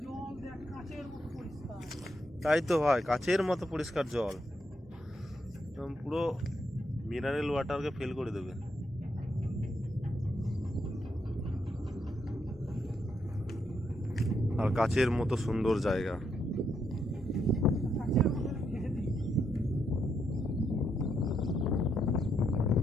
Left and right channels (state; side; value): normal; both; correlation 0.79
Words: তাই তো ভাই, কাচের মতো পরিষ্কার জল, একদম পুরো মিনারেল ওয়াটারকে ফেল করে দেবে। আর কাচের মতো সুন্দর জায়গা।